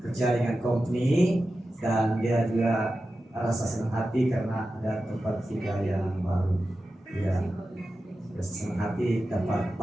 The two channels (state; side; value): normal; both; correlation 0.92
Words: dengan company, dan dia juga rasa senang hati karena ada tempat tinggal yang baru. Dia senang hati dapat